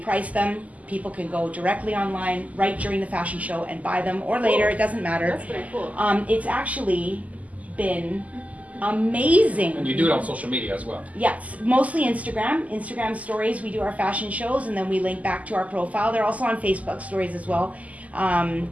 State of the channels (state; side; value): late; left; 0.074 ms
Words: them. People can go directly online right during the fashion show and buy them, or later, it doesn't matter. That's pretty cool. It's actually been amazing. And you do it on social media as well. Yes, mostly Instagram stories. We do our fashion shows and then we link back to our profile. They're also on Facebook stories as well.